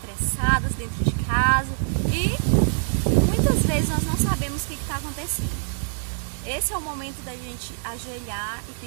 dentro de casa e muitas vezes nós não sabemos o que está acontecendo. Esse é o momento da gente ajoelhar e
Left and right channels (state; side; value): silent; left; digital silence